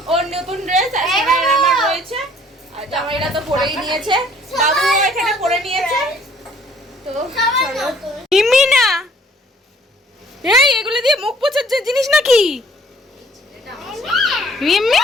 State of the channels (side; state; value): both; normal; correlation 0.58